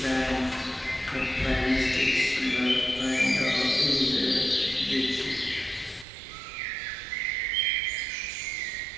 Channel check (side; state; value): left; drops out; at 6.1 s